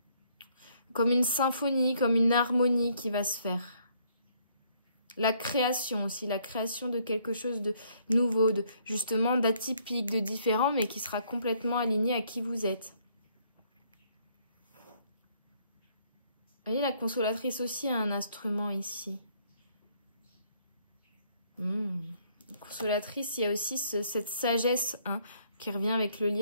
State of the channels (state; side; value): inverted; both; correlation -0.67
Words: comme une symphonie, comme une harmonie qui va se faire. La création aussi, la création de quelque chose de nouveau, justement d'atypique, de différent, mais qui sera complètement aligné à qui vous êtes. Vous voyez, la consolatrice aussi a un instrument ici. Consolatrice, il y a aussi cette sagesse hein, qui revient avec le